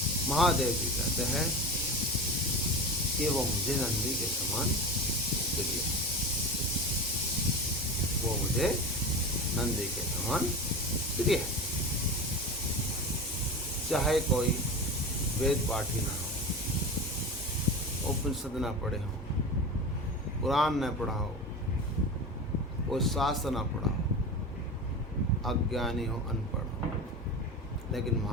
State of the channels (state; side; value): normal; both; correlation 0.27